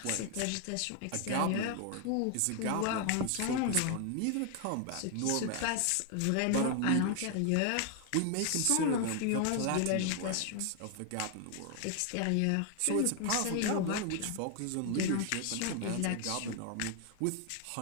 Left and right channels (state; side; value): different; both; correlation 0.00